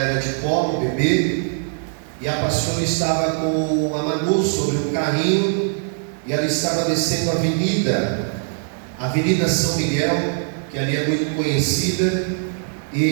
de colo, bebê, e a pastora estava com a Manu sobre um carrinho, e ela estava descendo a Avenida São Miguel, que ali é muito conhecida,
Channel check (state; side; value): silent; left; digital silence